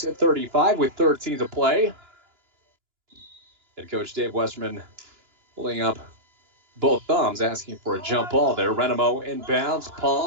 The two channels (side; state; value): left; late; 2.9 ms